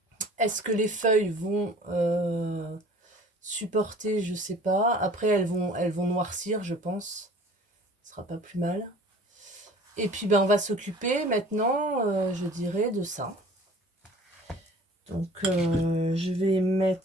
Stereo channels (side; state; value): both; normal; correlation 0.47